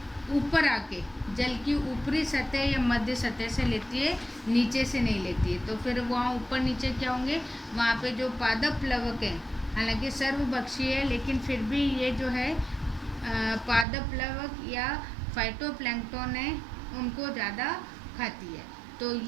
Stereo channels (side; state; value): left; drops out; at 13.9 s